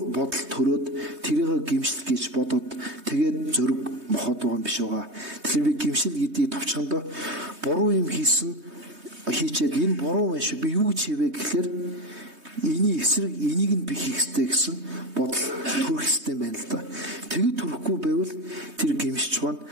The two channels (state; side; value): late; left; 3.2 ms